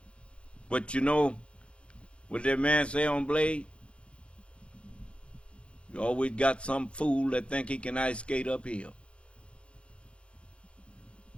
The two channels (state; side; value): late; right; 0.059 ms